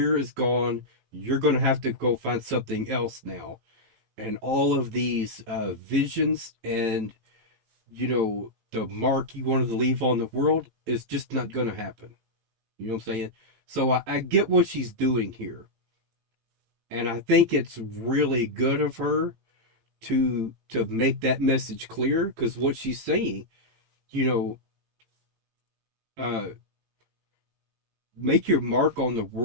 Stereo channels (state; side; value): late; left; 18 ms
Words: is gone. You're going to have to go find something else now. And all of these visions and, the mark you wanted to leave on the world is just not going to happen. You know what I'm saying? So I get what she's doing here. And I think it's really good of her to make that message clear, because what she's saying, make your mark on the